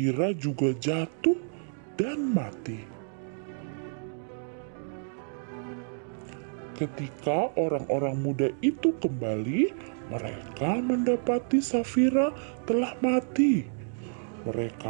juga jatuh dan mati. Ketika orang-orang muda itu kembali, mereka mendapati Safira telah mati.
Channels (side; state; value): left; silent; 58 dB below the other